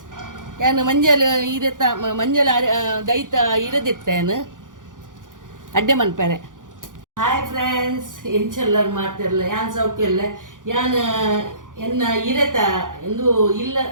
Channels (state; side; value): late; left; 0.88 ms